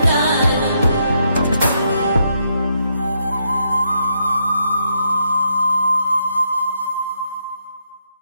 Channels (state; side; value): inverted; both; correlation -0.78